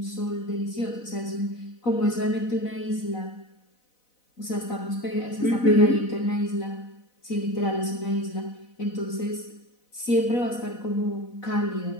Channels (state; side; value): late; right; 4.0 ms